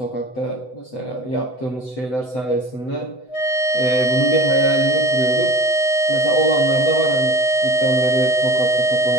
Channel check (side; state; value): right; late; 7.9 ms